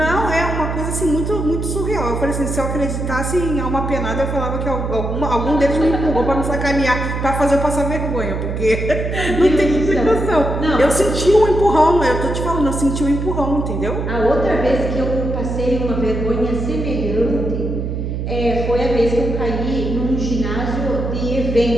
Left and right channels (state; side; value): noise; right; hum, 3 dB below the sound